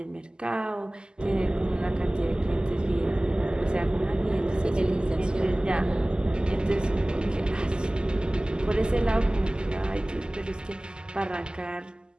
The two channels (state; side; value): late; left; 0.047 ms